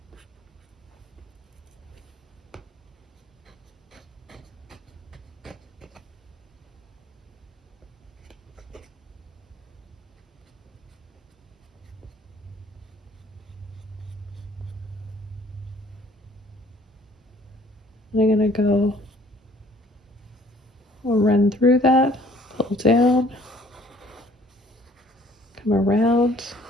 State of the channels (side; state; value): both; normal; correlation 0.57